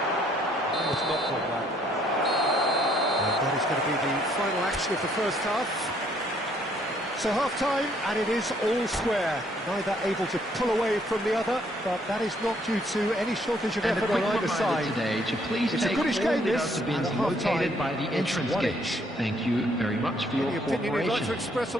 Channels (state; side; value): normal; both; correlation 0.67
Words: It's not called that. And that is going to be the final action of the first half. So half-time, and it is all square. Neither able to pull away from the other, but that is not due to any shortage of effort on either side. Today to please it's take a goodish all game, the this, bins located by the entrance gate. Thank you very much for your cooperation. Opinion you'd like to express